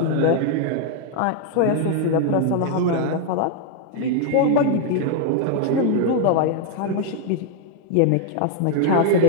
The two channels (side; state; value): both; different; correlation 0.00